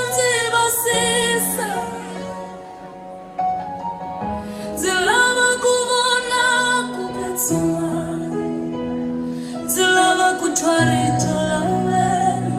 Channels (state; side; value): identical; both; correlation 1.00